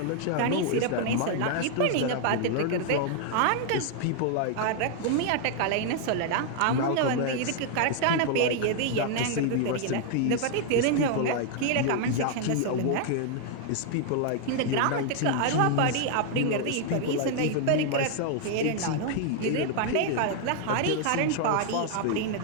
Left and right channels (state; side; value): different; both; correlation 0.00